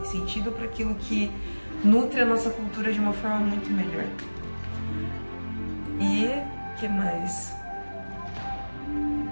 sentido para aquilo que nutre a nossa cultura de uma forma muito melhor. E o que mais?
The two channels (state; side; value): inverted; both; correlation -1.00